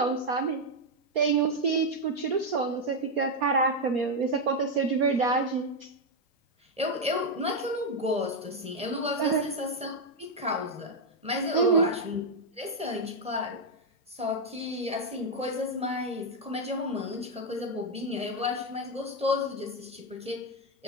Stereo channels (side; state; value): both; normal; correlation 0.02